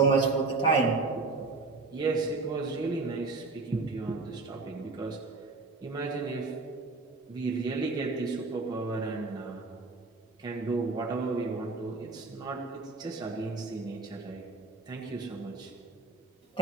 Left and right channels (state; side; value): quieter; left; 3.8 dB